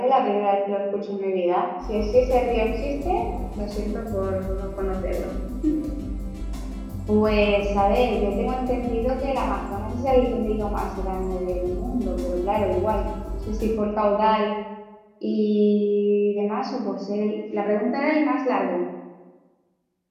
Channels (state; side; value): identical; both; correlation 1.00